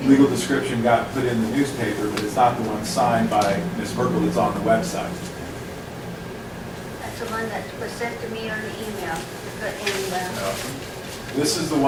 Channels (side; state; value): both; identical; correlation 1.00